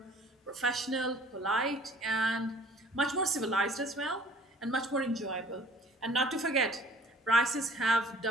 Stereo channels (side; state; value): both; normal; correlation 0.53